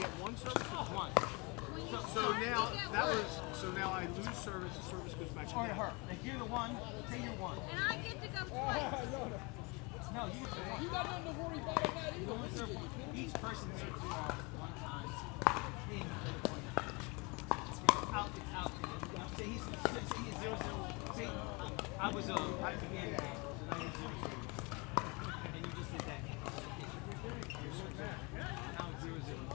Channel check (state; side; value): quieter; right; 28.5 dB